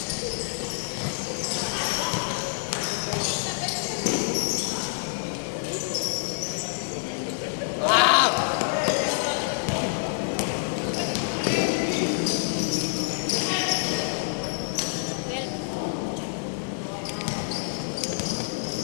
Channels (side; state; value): right; silent; digital silence